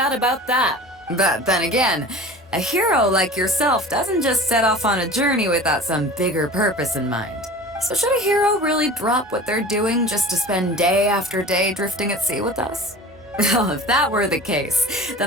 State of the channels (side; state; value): both; normal; correlation 0.39